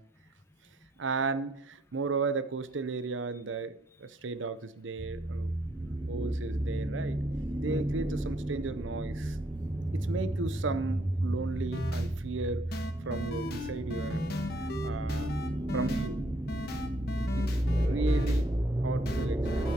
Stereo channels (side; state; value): both; normal; correlation 0.68